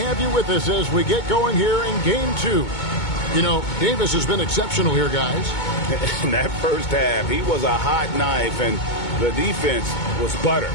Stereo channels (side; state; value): right; late; 2.2 ms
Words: you with us as we get going here in Game 2. You know, Davis has been exceptional here, guys. In that first half, he was a hot knife, and the defense was butter.